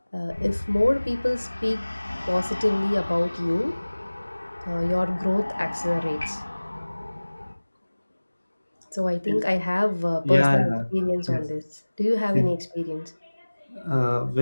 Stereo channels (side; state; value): both; inverted; correlation -1.00